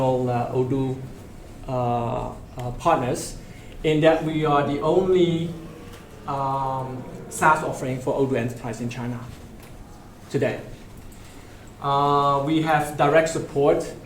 Odoo partners, in that we are the only SaaS offering for Odoo Enterprise in China today. We have direct support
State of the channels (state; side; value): identical; both; correlation 1.00